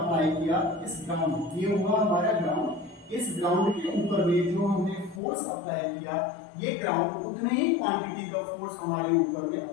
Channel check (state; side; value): drops out; right; at 5.2 s